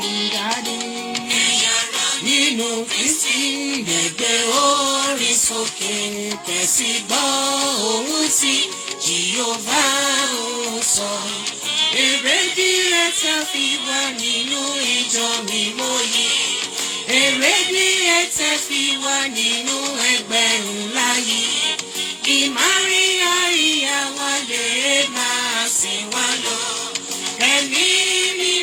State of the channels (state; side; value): identical; both; correlation 1.00